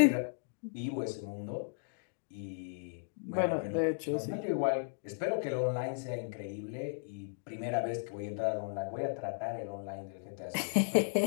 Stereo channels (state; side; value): silent; right; digital silence